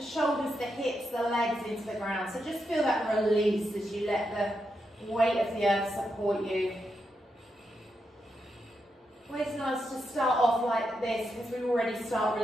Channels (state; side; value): normal; both; correlation 0.84